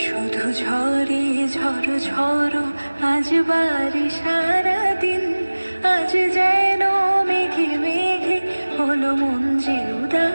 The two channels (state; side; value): inverted; both; correlation -1.00